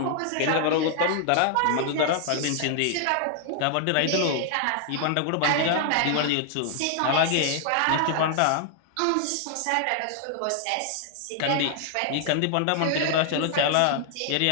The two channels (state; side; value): different; both; correlation 0.00